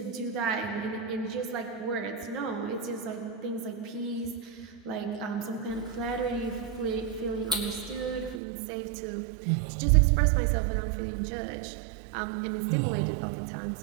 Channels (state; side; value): drops out; left; at 8.4 s